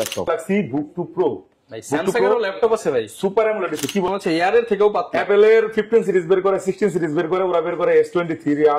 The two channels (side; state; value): both; identical; correlation 1.00